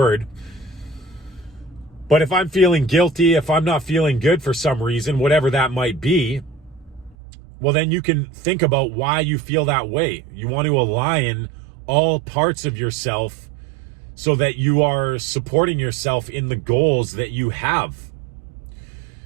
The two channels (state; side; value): drops out; left; at 7.2 s